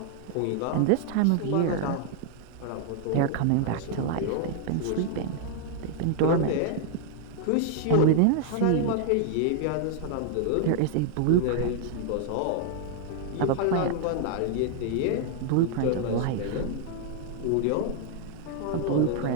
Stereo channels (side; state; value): both; different; correlation 0.00